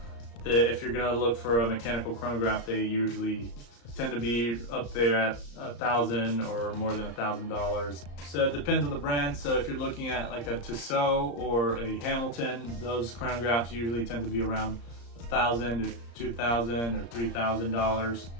If you're gonna look for a mechanical chronograph, they usually tend to be up there at $1,000 or more than $1,000. So it depends on the brand. So if you're looking at like a Tissot or a Hamilton, those chronographs usually tend to be around $1,000 to $2,000 or $3,000.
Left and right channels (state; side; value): late; right; 34 ms